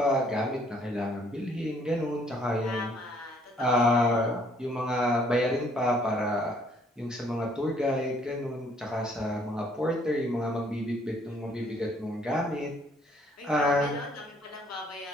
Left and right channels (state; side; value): normal; both; correlation 0.63